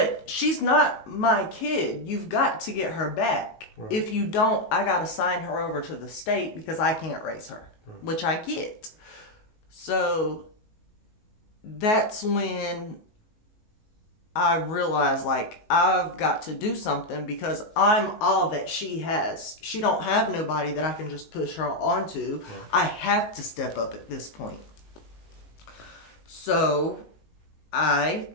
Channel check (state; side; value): late; right; 19 ms